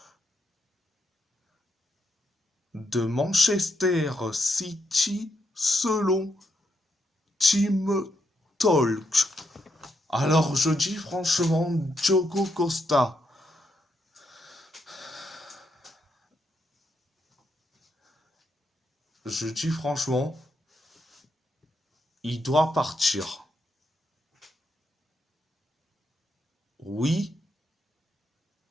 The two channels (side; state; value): both; normal; correlation 0.80